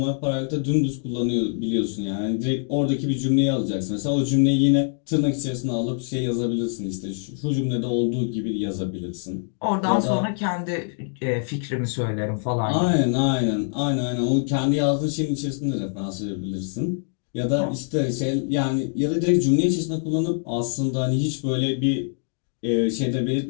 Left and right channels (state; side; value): silent; right; digital silence